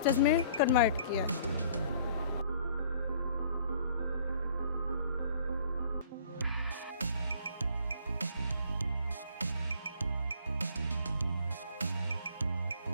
में कन्वर्ट किया है।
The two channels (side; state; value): both; inverted; correlation -0.56